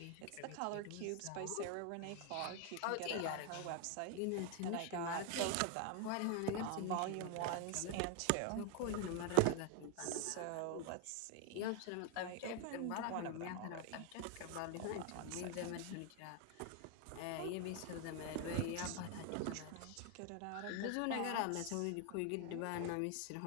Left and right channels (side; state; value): both; different; correlation 0.01